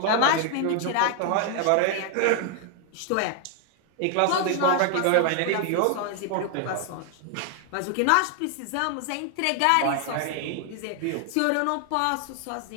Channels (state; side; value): different; both; correlation 0.00